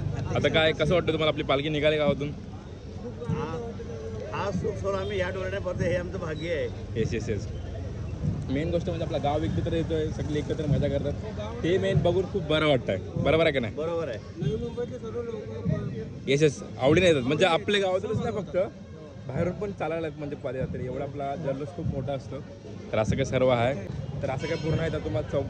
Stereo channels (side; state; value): both; identical; correlation 1.00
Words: आता काय कसं वाटतं तुम्हाला आपली पालखी निघाली गावातून? हा सुख सोड आम्ही या डोळ्याने पडतो, हे आमचं भाग्य आहे. येस. मेन गोष्ट म्हणजे आपला गाव एकत्र येतोय, सगळे एकत्र मजा करतात. ते मेन बघून खूप बरं वाटतंय. बरोबर आहे का नाही? बरोबर आहे. येस आवडीने येतात. म्हणजे आपल्या गावातूनच नाही, फक्त बाहेरून पण चालायला म्हणजे पदयात्रे. एवढा आपला जल्लोष खूप मोठा असतो. तर असं काय सर्व आहे. तर असं काय पूर्ण आहे. तर तुम्हाला